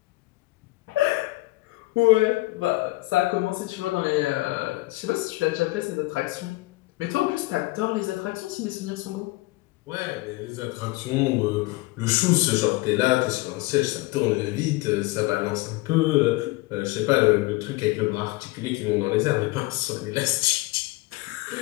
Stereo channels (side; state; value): right; quieter; 21.2 dB